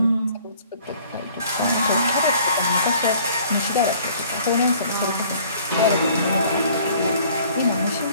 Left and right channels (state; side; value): inverted; both; correlation -0.55